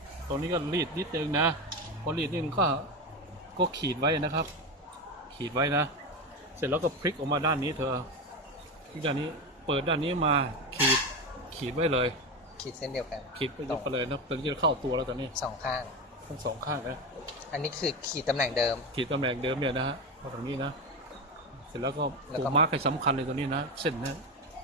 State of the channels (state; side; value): normal; both; correlation 0.18